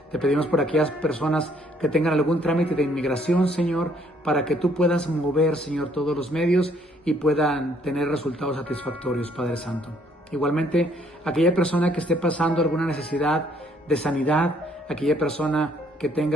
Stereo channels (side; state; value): both; normal; correlation 0.65